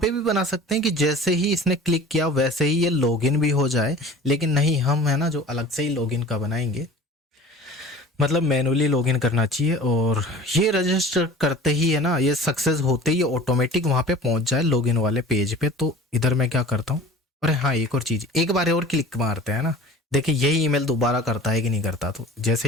भी बना सकते हैं कि जैसे ही इसने क्लिक किया वैसे ही ये लॉगिन भी हो जाए, लेकिन नहीं, हम है ना जो अलग से ही लॉगिन का बनाएंगे, मतलब मैनुअली लॉगिन करना चाहिए। और ये रजिस्टर करते ही है ना, ये सक्सेस होते ही ऑटोमेटिक वहाँ पे पहुँच जाए लॉगिन वाले पेज पे। तो इधर मैं क्या करता हूँ, अरे हाँ एक और चीज़, एक बार और क्लिक मारते हैं ना, देखिए यही ईमेल दोबारा करता है कि नहीं करता। तो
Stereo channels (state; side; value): normal; both; correlation 0.42